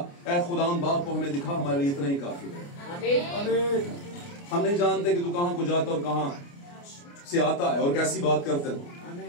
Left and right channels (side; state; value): right; late; 29 ms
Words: ऐ खुदावंद बाप को हमें दिखा, हमारे लिए इतना ही काफी है। हम नहीं जानते कि तू कहां को जाता और कहां से आता है और कैसी बात करता